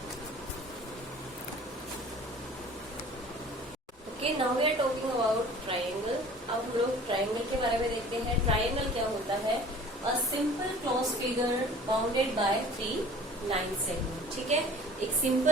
okay, now we are talking about triangle. अब हम लोग ट्राइंगल के बारे में देखते हैं। ट्राइंगल क्या होता है, a simple close figure bounded by 3 line segment. ठीक है, एक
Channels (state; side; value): normal; both; correlation 0.46